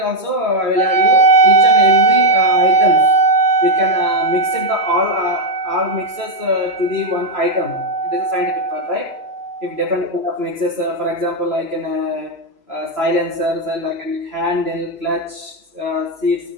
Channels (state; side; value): late; right; 3.0 ms